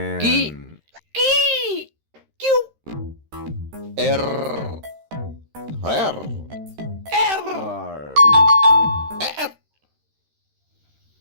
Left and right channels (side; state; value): left; late; 13 ms